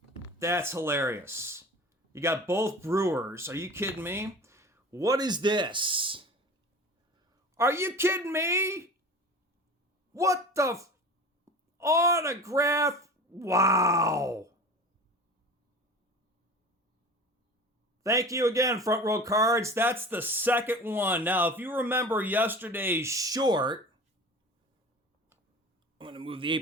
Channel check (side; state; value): both; normal; correlation 0.37